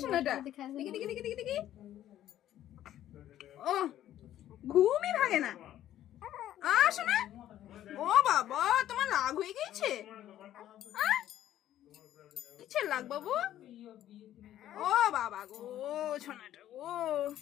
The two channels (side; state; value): right; quieter; 12.3 dB